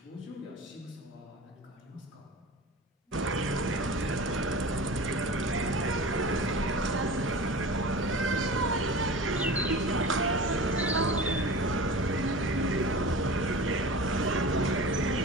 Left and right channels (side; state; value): both; normal; correlation 0.35